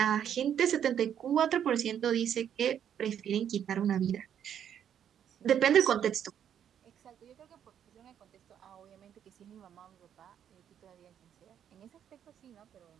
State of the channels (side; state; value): left; quieter; 9.2 dB